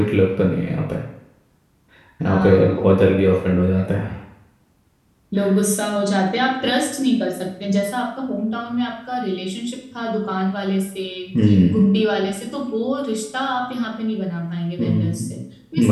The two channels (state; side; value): identical; both; correlation 1.00